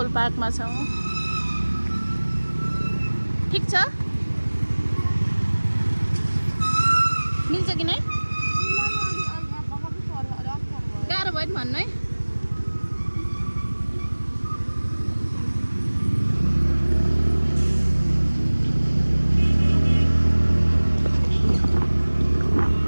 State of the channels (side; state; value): both; inverted; correlation -1.00